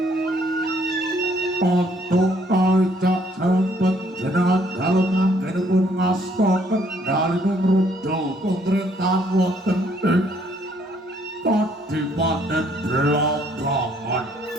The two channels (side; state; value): both; normal; correlation 0.65